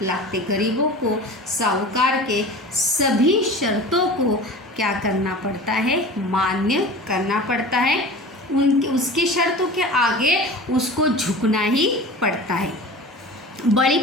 लागते. गरीबों को साहूकार के सभी शर्तों को क्या करना पड़ता है, मान्य करना पड़ता है. उसकी शर्तों के आगे उसको झुकना ही पड़ता है. बळी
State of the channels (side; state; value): both; normal; correlation 0.36